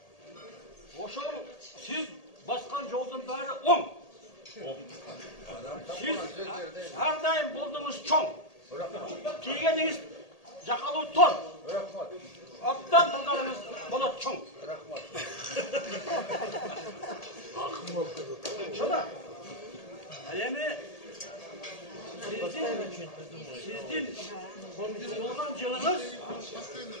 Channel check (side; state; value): right; late; 1.8 ms